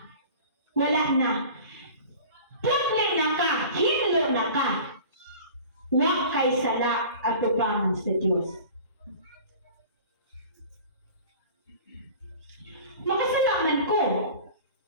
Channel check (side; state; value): both; inverted; correlation -0.41